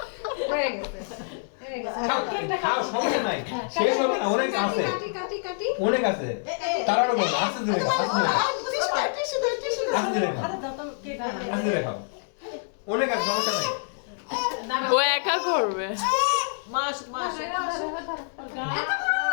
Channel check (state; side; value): silent; right; digital silence